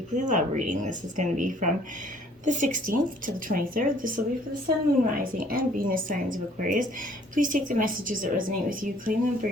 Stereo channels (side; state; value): both; normal; correlation 0.58